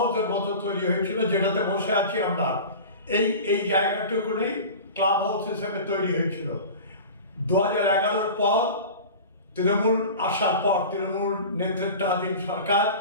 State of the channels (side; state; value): both; inverted; correlation -0.35